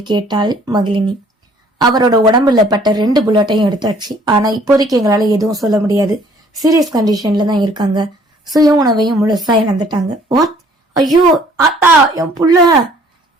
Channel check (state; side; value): normal; both; correlation 0.58